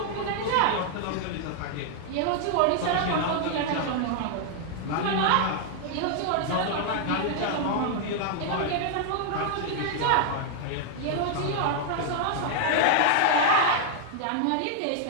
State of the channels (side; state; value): both; different; correlation 0.00